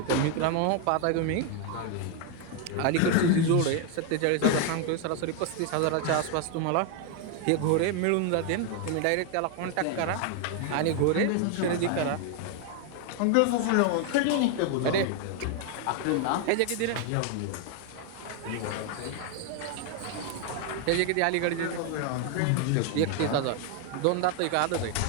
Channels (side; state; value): both; different; correlation 0.01